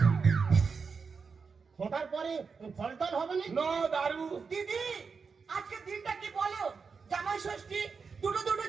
ফোটার পরে ফল টল হবে না? নো দারু। দিদি, আজকে দিনটা কি বলো? জামাই ষষ্ঠী, দুটো দুটো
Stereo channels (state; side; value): quieter; left; 5.3 dB